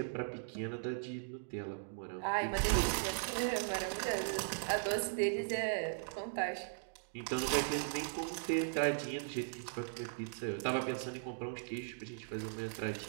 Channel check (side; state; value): left; silent; digital silence